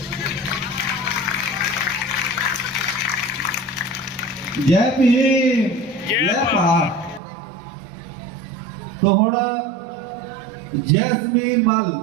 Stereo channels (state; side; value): drops out; left; at 7.2 s